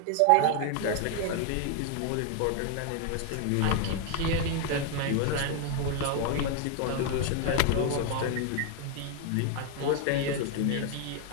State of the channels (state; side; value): different; both; correlation 0.00